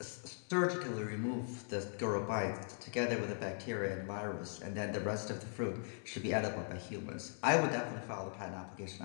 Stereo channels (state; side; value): silent; right; 51 dB below the other